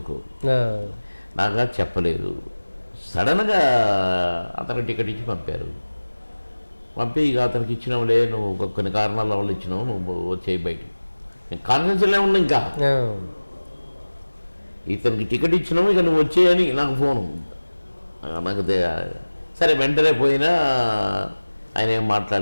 నాకు చెప్పలేదు. సడన్గా అతనికి టికెట్ ఇచ్చి పంపి ఇక అతనికి ఇచ్చినావులే, నువ్వు కొన్ని కారణాల వల్ల ఇచ్చినావు, నువ్వు వచ్చేయి బయటికి. నేను కాన్ఫిడెన్స్లో ఉన్నా. ఇంకా ఇతనికి టికెట్ ఇచ్చినావు, ఇక నువ్వు వచ్చేయని నాకు ఫోను. నాకు సరే వెంటనే పోయినా ఆయన ఏం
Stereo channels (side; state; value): both; inverted; correlation -1.00